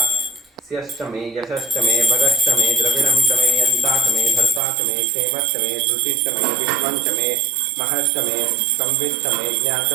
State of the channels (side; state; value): left; drops out; at 4.6 s